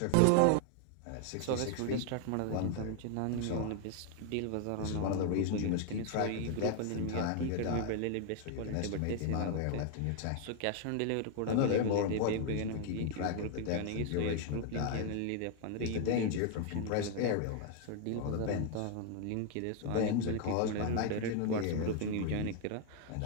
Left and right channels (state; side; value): different; both; correlation 0.00